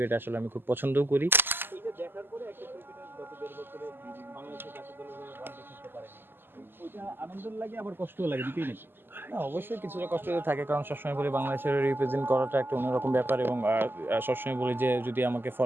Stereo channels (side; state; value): left; late; 0.097 ms